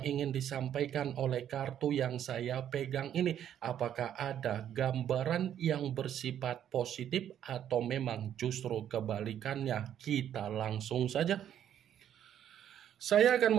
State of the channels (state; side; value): quieter; left; 10.2 dB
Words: ingin disampaikan oleh kartu yang saya pegang ini? Apakah ada gambaran yang bersifat positif atau memang justru kebalikannya? Kita langsung saja. Saya